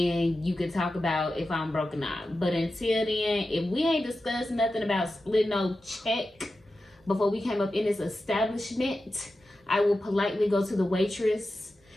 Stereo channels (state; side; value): normal; both; correlation 0.92